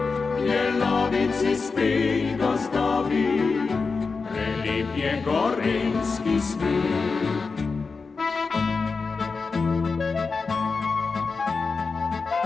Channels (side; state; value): right; quieter; 4.6 dB